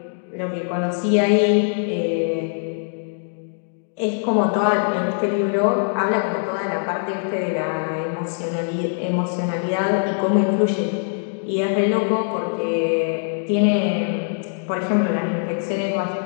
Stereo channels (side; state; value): right; silent; digital silence